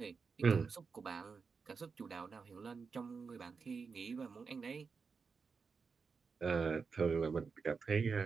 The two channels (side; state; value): left; quieter; 5.2 dB